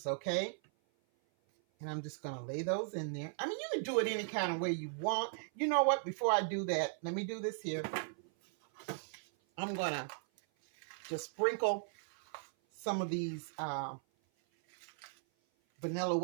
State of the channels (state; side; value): silent; left; 53 dB below the other